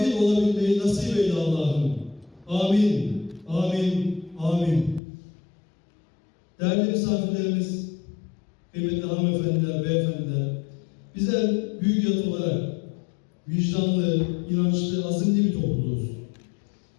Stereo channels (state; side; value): drops out; right; at 5.0 s